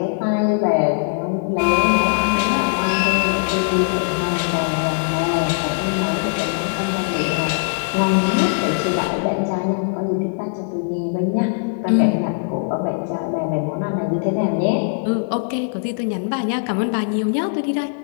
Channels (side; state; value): right; silent; 65 dB below the other